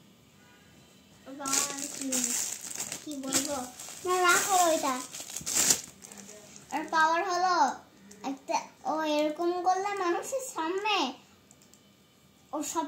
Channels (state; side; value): identical; both; correlation 1.00